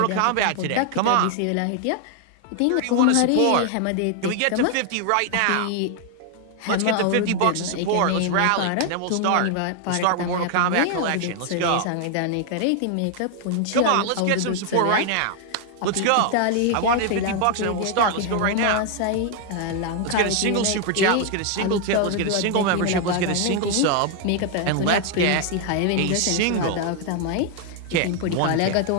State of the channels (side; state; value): both; different; correlation 0.00